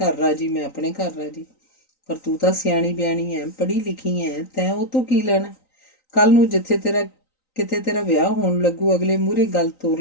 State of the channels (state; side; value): late; right; 3.9 ms